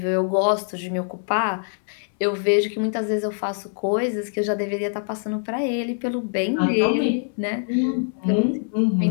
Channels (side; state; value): right; silent; 63 dB below the other